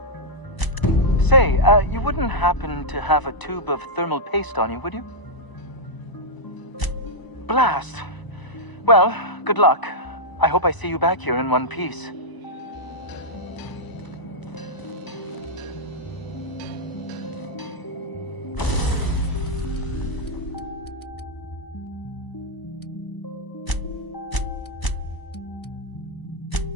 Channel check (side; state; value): right; late; 1.0 ms